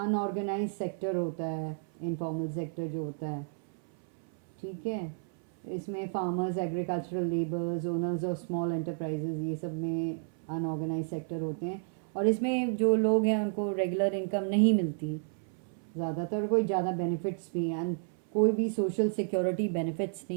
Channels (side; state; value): left; silent; 57 dB below the other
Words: सेक्टर होता है, इनफॉर्मल सेक्टर जो होता है, ठीक है। इसमें farmers, agricultural labours, owners of small enterprises, ये सब में अनऑर्गेनाइज सेक्टर होते हैं। और इसमें जो लोग हैं उनको रेगुलर इनकम नहीं मिलती ज़्यादातर, कोई ज़्यादा बेनिफिट्स भी हैं, एंड कोई भी सोशल सिक्योरिटी बेनिफिट्स